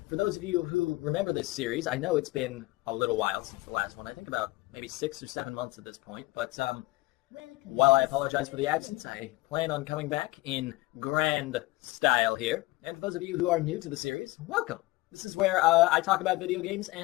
For those of you who remember this series, I know it's been a little while since the last one. I think about maybe 6 or 7 months at this point, but while I apologize for the absence, I plan on coming back in grand style here. And for those of you who are new to the series, welcome. This is where I talk about video games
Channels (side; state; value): right; quieter; 20.0 dB